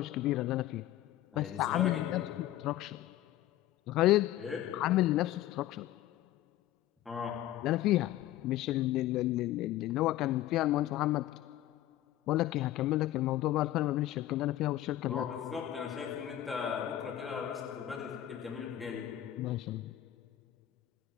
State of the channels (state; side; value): quieter; right; 13.9 dB